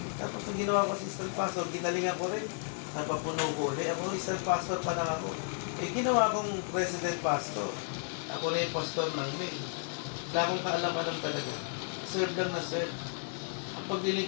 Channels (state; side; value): silent; right; 56 dB below the other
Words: Tapos nung ginawa ko assistant pastor, ginalingan ko rin. Napapuno ko ulit. Ako assistant pastor pa lang ako. Ginawa kong president pastor. Ako na yung pastor ng main. Wala akong kaalam-alam talaga. Serve lang na serve. Ang